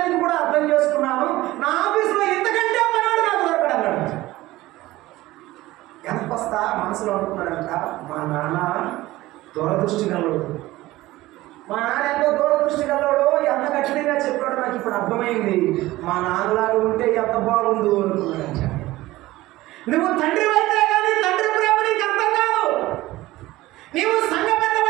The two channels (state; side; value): quieter; left; 17.6 dB